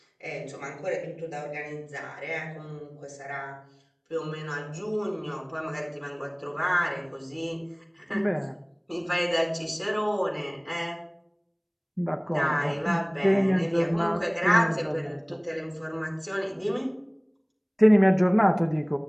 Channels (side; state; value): both; identical; correlation 1.00